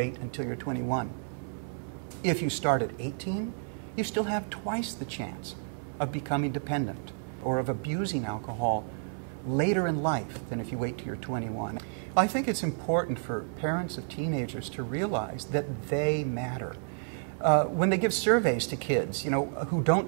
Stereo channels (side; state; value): left; silent; 57 dB below the other